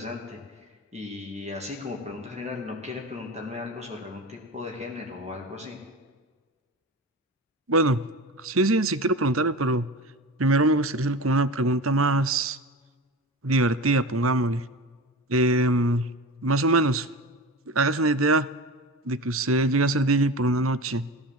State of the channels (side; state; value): both; normal; correlation 0.30